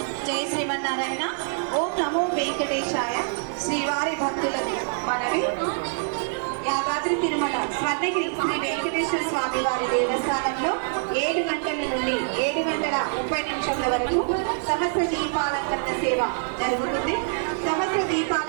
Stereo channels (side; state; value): left; silent; 62 dB below the other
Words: జై శ్రీమన్నారాయణ. ఓం నమో వెంకటేశాయ. శ్రీవారి భక్తులకు మనవి. యాదాద్రి తిరుమల స్వర్ణగిరి శ్రీ వెంకటేశ్వర స్వామి వారి దేవస్థానంలో 7 గంటల నుండి 7:30 వరకు సహస్ర దీపాలంకరణ సేవ జరుగుతుంది. సహస్ర